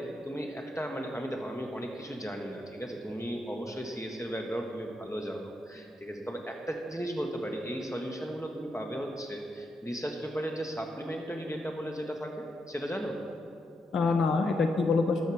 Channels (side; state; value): both; normal; correlation 0.82